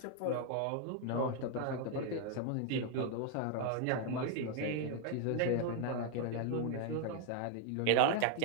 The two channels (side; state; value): both; different; correlation 0.01